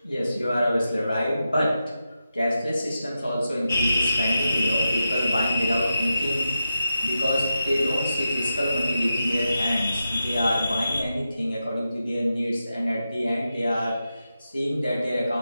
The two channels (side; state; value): both; inverted; correlation -0.90